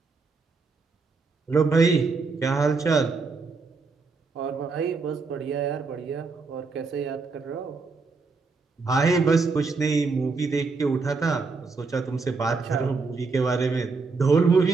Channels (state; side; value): quieter; left; 4.3 dB